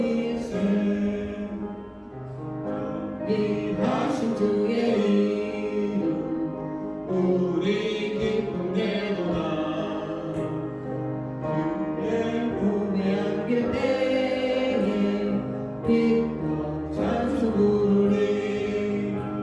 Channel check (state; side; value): identical; both; correlation 1.00